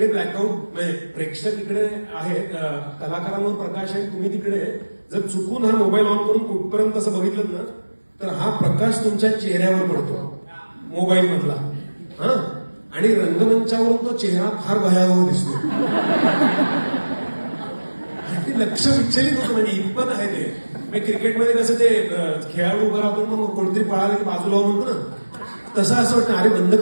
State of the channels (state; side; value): inverted; both; correlation -1.00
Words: ब्लॅकआउट म्हणजे प्रेक्षक इकडे आहेत, कलाकारांवर प्रकाश आहे, तुम्ही तिकडे जर चुकून हा मोबाईल ऑन करून कुठपर्यंत असं बघितलं ना तर हा प्रकाश तुमच्या चेहऱ्यावर पडतो मोबाईल मधला. हा आणि रंगमंचावरून तो चेहरा फार भयावह दिसतो. लक्ष विचलित होतं म्हणजे इतपत आहे ते. क्रिकेटमध्ये कसं ते खेळाडू उभं राहतो मग कोणतरी पळालं की बाजूला म्हणतो ना, तसं असं वाटतं अरे बंद